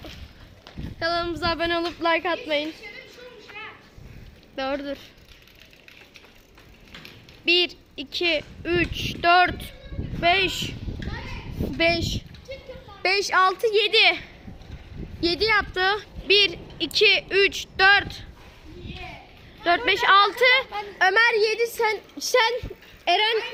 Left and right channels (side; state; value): both; identical; correlation 1.00